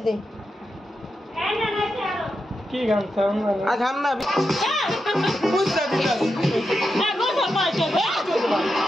দে। কি গান চাও না আ গান না বুঝতা দিলা না গো সবাই চলে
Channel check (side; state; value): both; normal; correlation 0.87